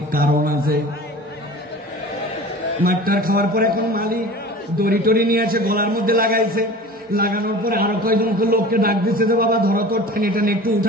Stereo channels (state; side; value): normal; both; correlation 0.39